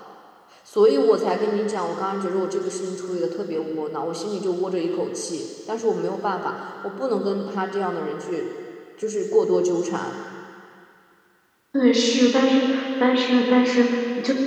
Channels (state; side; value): identical; both; correlation 1.00